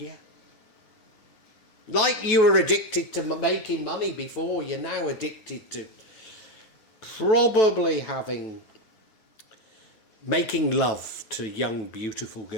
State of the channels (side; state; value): right; late; 9.2 ms